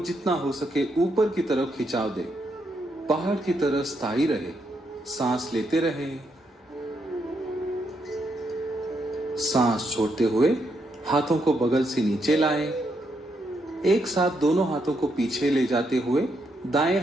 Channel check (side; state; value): both; normal; correlation 0.78